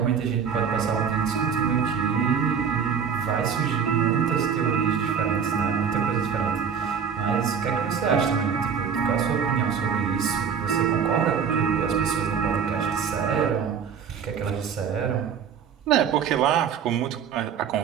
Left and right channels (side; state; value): left; quieter; 7.1 dB